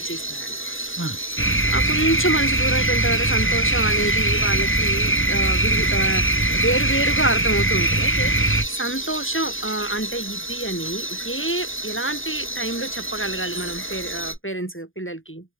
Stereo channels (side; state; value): right; late; 0.59 ms